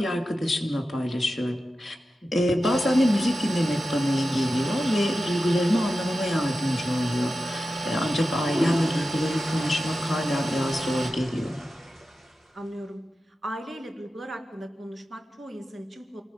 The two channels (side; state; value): both; normal; correlation 0.92